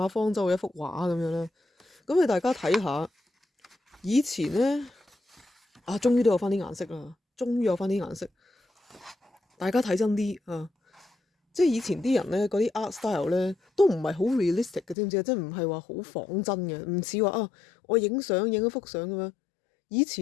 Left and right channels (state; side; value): drops out; right; at 15.0 s